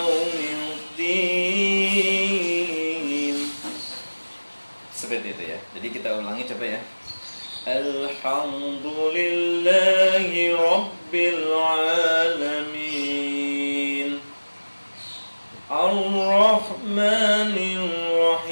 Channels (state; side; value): inverted; both; correlation -1.00